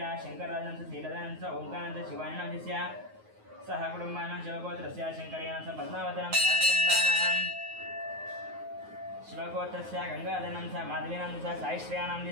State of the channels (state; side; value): late; left; 9.4 ms